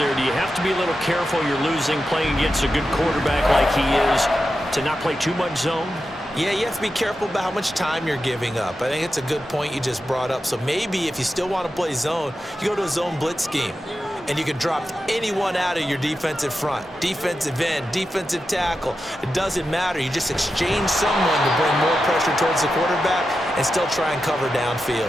Do you have to be a little careful? You're losing, playing against a good quarterback like he is, to not play too much zone? Yeah, you have to be careful about how much time you're giving up. I think it's a good point you just brought up. So maybe if you still want to play zone, you go to a zone blitz scheme. And you can drop anyone out of your defensive front. Defensive end, defensive tackle. It doesn't matter. You just exchange someone to bring more pressure towards the quarterback and still try and cover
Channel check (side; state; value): both; normal; correlation 0.90